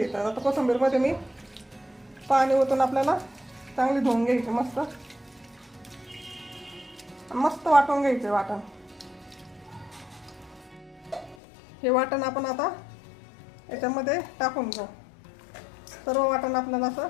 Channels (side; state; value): right; drops out; at 11.4 s